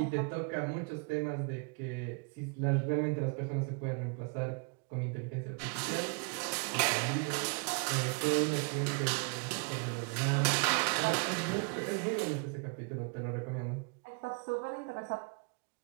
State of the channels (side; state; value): left; quieter; 35.1 dB